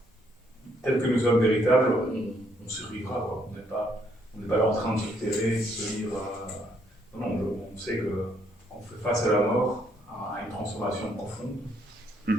tel que nous sommes véritables, on survivra, quoi. On n'est pas là en train de se terrer, de se dire, non, on sait qu'on fait face à la mort, à une transformation profonde,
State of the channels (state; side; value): normal; both; correlation 0.71